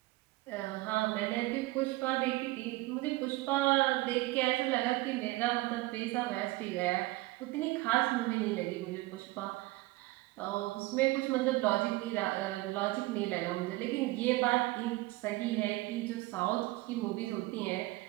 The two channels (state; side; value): quieter; left; 20.1 dB